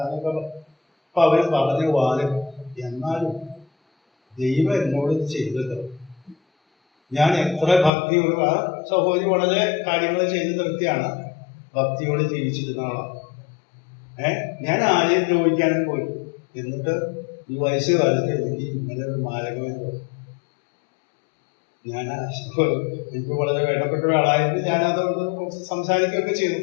എന്നൊക്കെ. അപ്പൊ അവർ പറഞ്ഞു വാലും. എന്നാലും ദൈവം എന്നോട് ചെയ്തല്ലോ. ഞാൻ എത്ര ഭക്തിയോട്, ആ സഹോദരി വളരെ കാര്യങ്ങൾ ചെയ്ത് നിർത്തിയാണ്, ഭക്തിയോട് ജീവിച്ചിരുന്ന ആളാണ്. ഞാൻ ആരെയും ദ്രോഹിക്കാനും പോയി. എന്നിട്ട് ഈ വയസ്സുകാലത്ത് എനിക്ക് ഇങ്ങനെ ഒരു മാരകമായി തോന്നി. എനിക്ക് വളരെ വേണ്ടപ്പെട്ട ഒരാളായിരുന്നു. ഞാനതുകൊണ്ട് സംസാരിക്കുകയൊക്കെ ചെയ്തു.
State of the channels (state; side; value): drops out; right; at 7.9 s